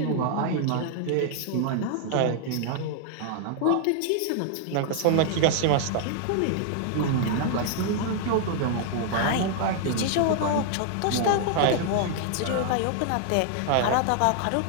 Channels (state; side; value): different; both; correlation 0.00